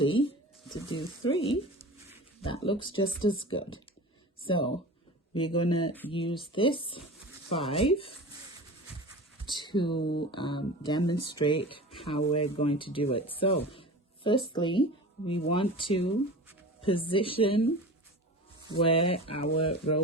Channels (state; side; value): normal; both; correlation 0.34